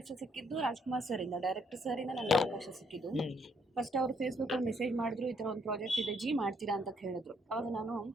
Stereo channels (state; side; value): normal; both; correlation 0.70